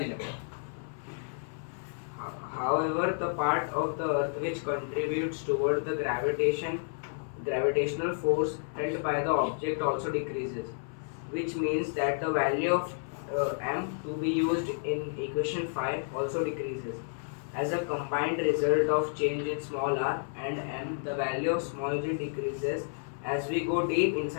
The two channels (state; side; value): silent; right; 57 dB below the other